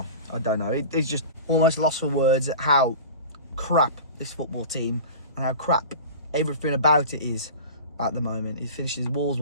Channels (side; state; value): both; inverted; correlation -0.35